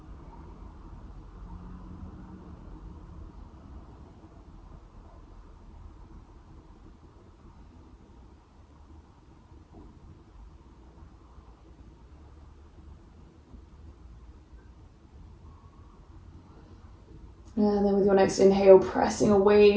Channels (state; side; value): identical; both; correlation 1.00